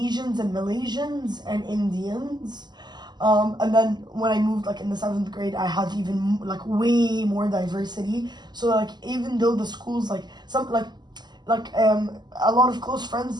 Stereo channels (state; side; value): late; left; 0.21 ms